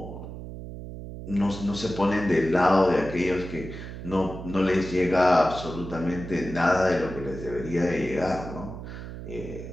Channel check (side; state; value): right; noise; hum, 10 dB below the sound